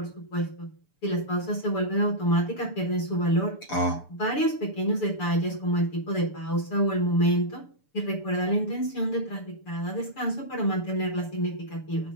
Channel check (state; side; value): late; right; 6.8 ms